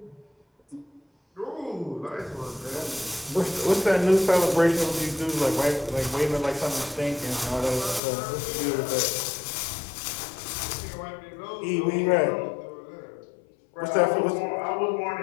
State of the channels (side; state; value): right; drops out; at 8.0 s